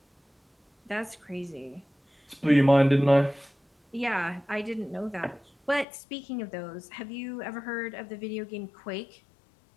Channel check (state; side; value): drops out; right; at 5.9 s